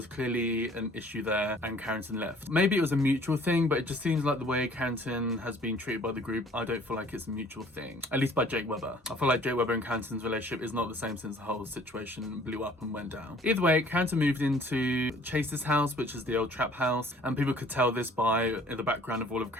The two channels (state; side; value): normal; both; correlation 0.54